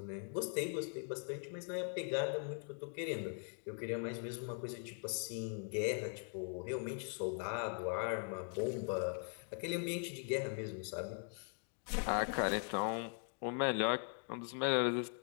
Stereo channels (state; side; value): silent; right; 50 dB below the other